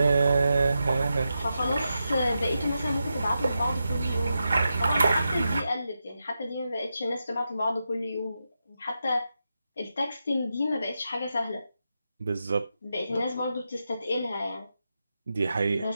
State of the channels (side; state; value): both; inverted; correlation -0.88